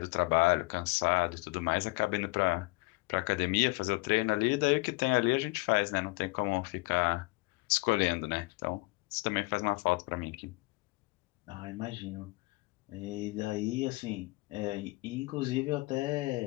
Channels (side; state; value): right; quieter; 24.9 dB